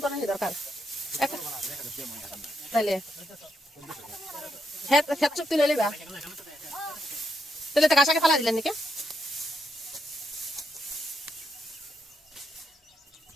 করার দরকার। তাহলে খেত চুক্তি লইলে বা তাহলে তো কাঁসাকে ফালা দিলেন নাকি?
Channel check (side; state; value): both; normal; correlation 0.80